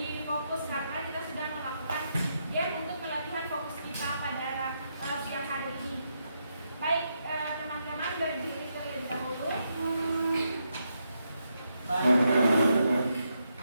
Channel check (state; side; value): inverted; both; correlation -0.81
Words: fokus karena kita sudah melakukan game untuk melatihan fokus kita pada siang hari ini. Baik, teman-teman berdiri terlebih dahulu.